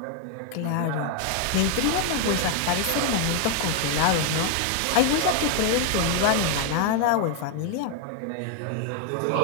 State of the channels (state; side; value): different; both; correlation 0.00